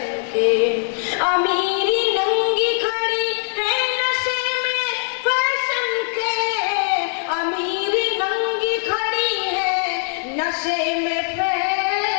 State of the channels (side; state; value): right; silent; 65 dB below the other